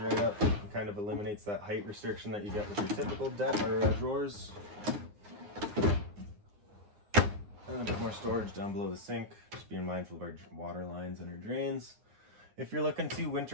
right up. It kind of eliminates that height restriction that you get with your typical drawers. And a bit more storage down below the sink, just being mindful of our water lines and our drains. If you're looking to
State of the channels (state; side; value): late; left; 9.7 ms